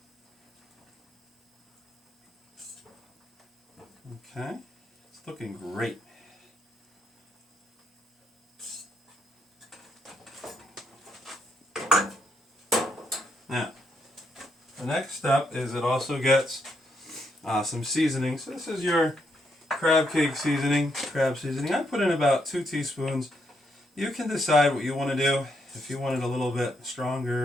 Okay, it's looking great. Now, the next step is it also gets some seasoning. So this is your crab cake seasoning, crab seasoning. I put in about 2 teaspoons. You can decide what you want to do. If you want it a little bit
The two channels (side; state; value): both; normal; correlation 0.77